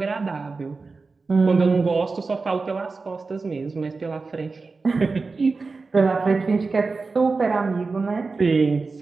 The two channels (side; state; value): left; quieter; 4.1 dB